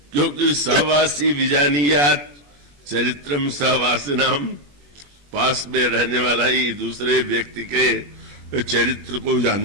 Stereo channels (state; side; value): late; left; 21 ms